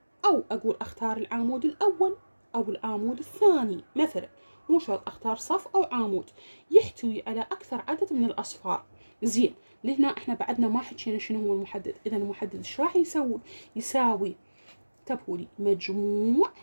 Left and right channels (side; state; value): both; inverted; correlation -1.00